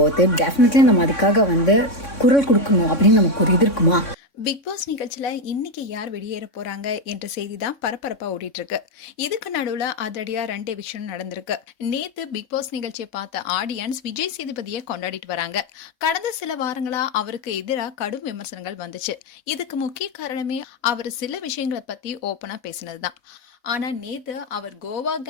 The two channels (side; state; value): right; late; 4.1 ms